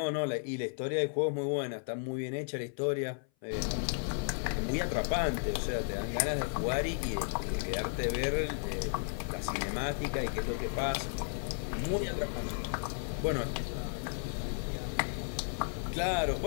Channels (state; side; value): silent; right; 55 dB below the other